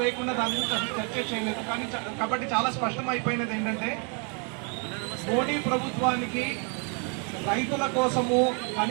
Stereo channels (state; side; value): quieter; left; 37.0 dB